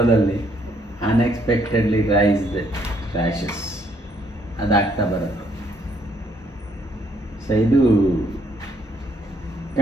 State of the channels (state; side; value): normal; both; correlation 0.69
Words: ಅನ್ಎಕ್ಸ್ಪೆಕ್ಟೆಡ್ಲಿ ರೈಸ್ಡ್ ರ್ಯಾಷಸ್ ಅದಾಗ್ತಾ ಬರುತ್ತೆ. ಸೊ ಇದು